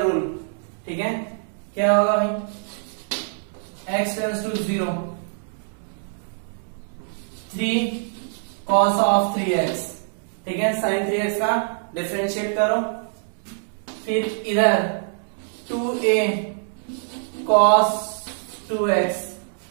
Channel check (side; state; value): left; silent; digital silence